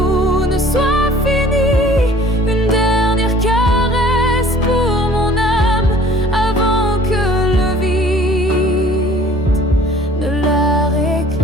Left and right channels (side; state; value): both; normal; correlation 0.52